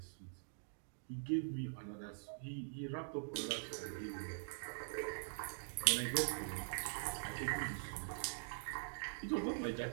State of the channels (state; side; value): silent; left; digital silence